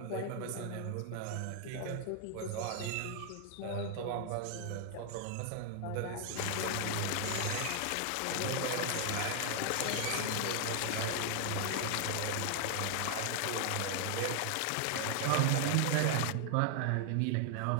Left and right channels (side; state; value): both; different; correlation 0.00